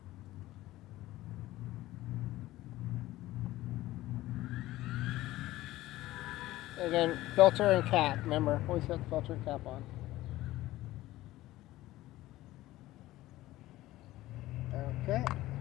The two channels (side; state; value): right; quieter; 16.6 dB